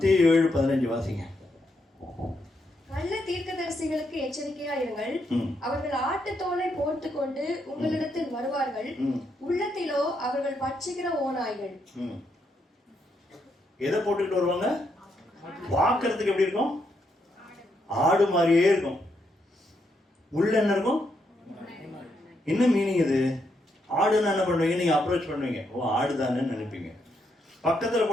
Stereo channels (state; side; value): normal; both; correlation 0.79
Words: 7:15 வாசிங்க. கள்ள தீர்க்கதரிசிகளுக்கு எச்சரிக்கையா இருங்கள். அவர்கள் ஆட்டுத்தோலை போட்டுக் கொண்டு உங்களிடத்தில் வருவார்கள். உள்ளத்திலோ அவர்கள் பட்சிக்கிற ஓநாய்கள். எதை போட்டுக்கிட்டு வருவாங்க? பார்க்கறதுக்கு எப்படி இருக்கும்? ஆடு மாதிரியே இருக்கும். உள்ள என்ன இருக்கும்? என்ன மீனிங் இது? ஆடுன்னு என்ன பண்ணுவீங்க? நீங்க அப்ரோச் பண்ணுவீங்க, ஓ ஆடுதானு நினைப்பீங்க. பக்கத்துல